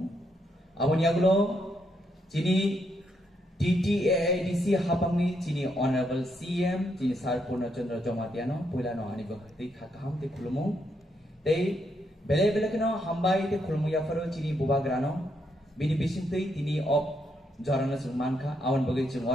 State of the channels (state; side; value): normal; both; correlation 0.77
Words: Aboni agulo sini TTAIDC hapamni sini Honorable CM sini Sar Purna Chandra Jomatiano pula no ani bhakti khakam te khulumu. Tei bele bele keno hambai te khulumu ya faro sini bubagrano. Bini bisintei tini op jorana sungmanka awan bagai